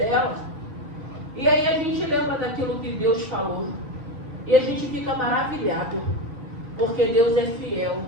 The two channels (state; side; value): late; left; 3.3 ms